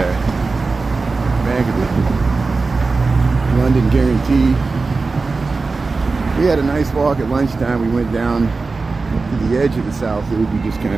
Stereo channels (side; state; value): left; quieter; 4.0 dB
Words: Bank of the London Guarantee. We had a nice walk at lunchtime. We went down to the edge of the South Loop. We just